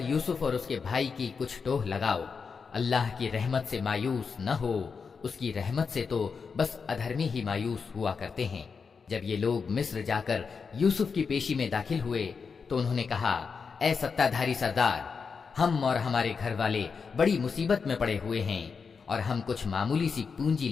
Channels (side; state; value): right; quieter; 5.5 dB